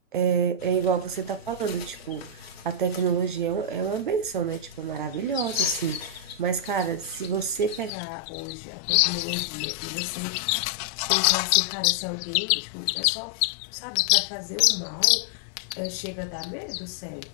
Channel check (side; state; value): right; drops out; at 7.9 s